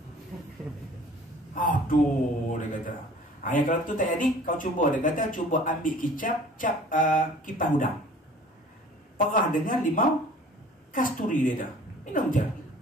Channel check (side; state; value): both; normal; correlation 0.49